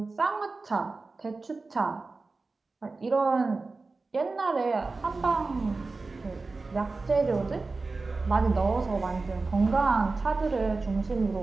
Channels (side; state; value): left; quieter; 3.7 dB